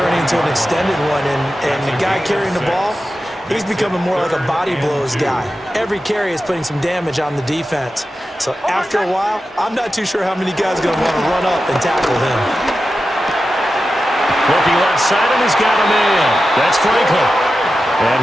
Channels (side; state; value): both; normal; correlation 0.92